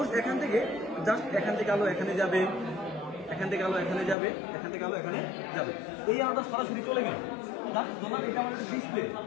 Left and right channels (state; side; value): drops out; right; at 4.2 s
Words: এখান থেকে জাস্ট এখান থেকে আলো এখানে যাবে, এখান থেকে আলো এখানে যাবে, এখান থেকে আলো এখানে যাবে। এই আলোটা সরাসরি চলে গেল, জাস্ট ধরলাম এটা আমাদের ডিসপ্লে।